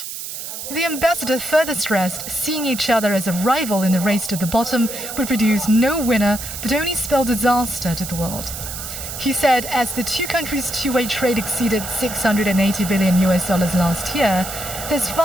The ambassador further stressed seeing each other as a rival in the race to the bottom would produce no winner but only spell disaster to the world. He said as the two countries' two-way trade exceeded $680 billion last year, there's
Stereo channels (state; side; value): noise; right; hiss, 8 dB below the sound